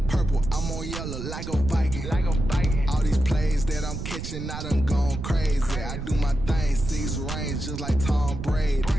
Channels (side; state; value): right; noise; rumble, 7 dB below the sound